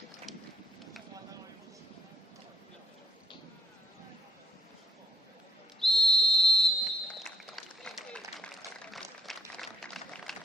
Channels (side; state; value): both; normal; correlation 0.66